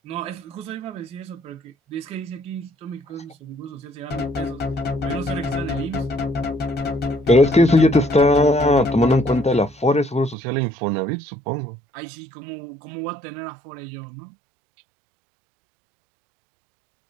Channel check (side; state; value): left; drops out; at 10.4 s